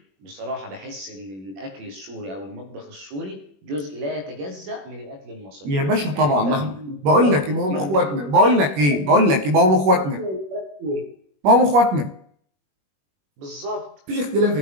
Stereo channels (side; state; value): left; late; 21 ms